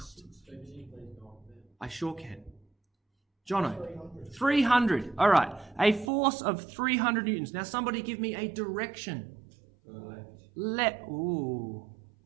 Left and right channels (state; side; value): drops out; left; at 6.1 s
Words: I sure can. Jono, 300. All right. A force of 300 newtons. Now, somebody give me a direction. Ooh.